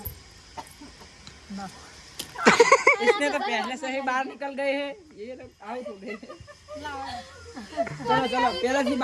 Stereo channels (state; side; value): identical; both; correlation 1.00